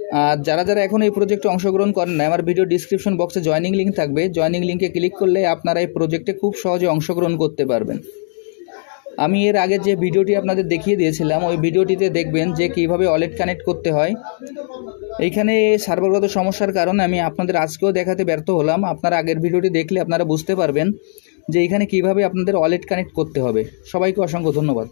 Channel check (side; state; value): right; silent; digital silence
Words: আর যারা এখন এই প্রজেক্টে অংশগ্রহণ করেন না, আমার ভিডিও ডিসক্রিপশন বক্সে জয়েনিং লিঙ্ক থাকবে, জয়েনিং লিঙ্কে ক্লিক করলে আপনারা এই প্রজেক্টে খুব সহজে অংশগ্রহণ করতে পারবেন। আমি এর আগে যে ভিডিওটি আপনাদের দেখিয়ে দিয়েছিলাম ওই ভিডিওটিতে দেখবেন যে কীভাবে ওয়ালেট কানেক্ট করতে হয়। এইখানে সার্ভারগত সমস্যার কারণে আমি আপনাদের আজকেও দেখাতে ব্যর্থ হলাম। আপনারা আগের ভিডিওটি দেখলে আপনারা বুঝতে পারবেন যে এইখানে কীভাবে আপনাদের ওয়ালেট কানেক্ট করতে হবে। সবাইকে অসংখ্য ধন্যবাদ।